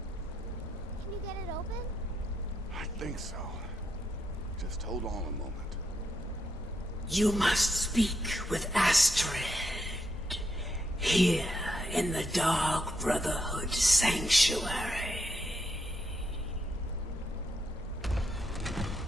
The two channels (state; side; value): normal; both; correlation 0.80